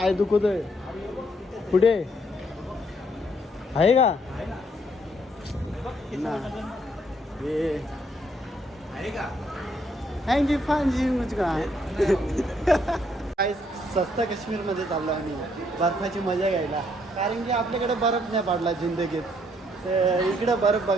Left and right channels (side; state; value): both; normal; correlation 0.70